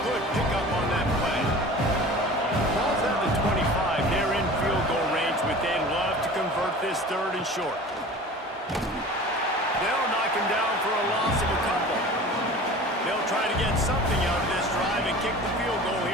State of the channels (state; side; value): normal; both; correlation 0.39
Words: good pickup on that play. Ball's at the 25. They're in field goal range, but they'd love to convert this 3rd and short. They'll knock him down for a loss of a couple. They'll try to get something out of this drive and kick the field goal